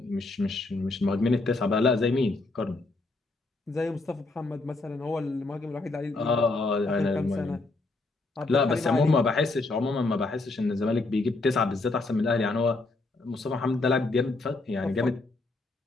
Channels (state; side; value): quieter; right; 3.3 dB